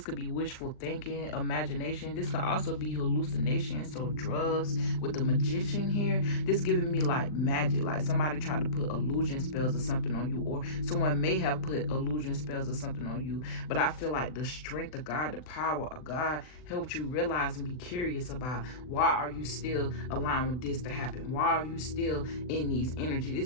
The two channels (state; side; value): late; right; 39 ms